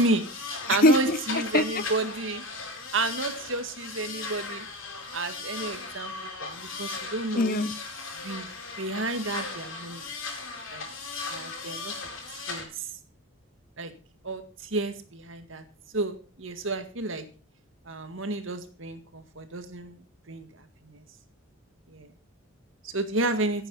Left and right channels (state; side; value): normal; both; correlation 0.20